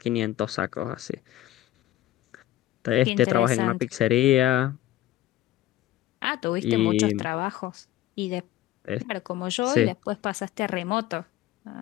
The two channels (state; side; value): quieter; right; 14.4 dB